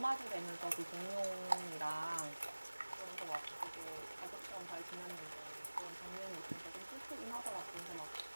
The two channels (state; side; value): inverted; both; correlation -1.00